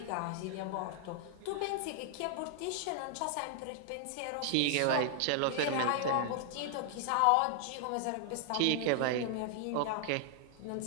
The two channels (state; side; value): different; both; correlation 0.00